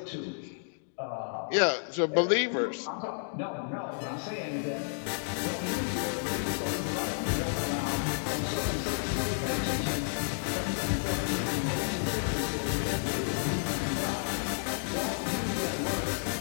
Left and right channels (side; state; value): right; silent; digital silence